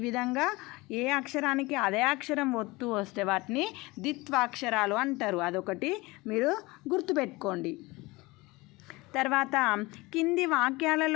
విధంగా ఏ అక్షరానికి అదే అక్షరం ఒత్తు వస్తే వాటిని ద్విత్వాక్షరాలు అంటారు. అదొకటి మీరు గుర్తుపెట్టుకోండి. తర్వాత కింది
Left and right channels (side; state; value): right; quieter; 22.5 dB